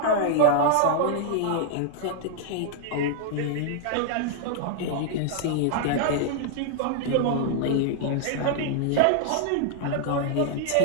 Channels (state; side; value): different; both; correlation 0.00